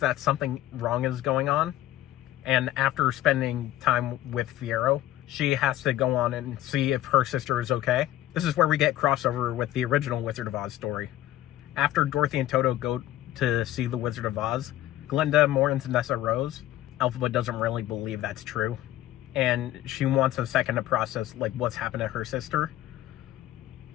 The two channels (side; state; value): right; quieter; 14.1 dB